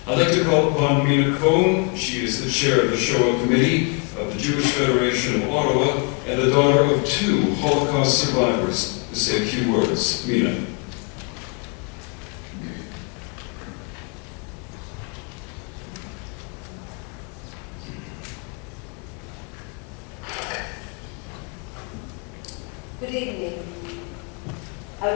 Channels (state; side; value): quieter; right; 35.2 dB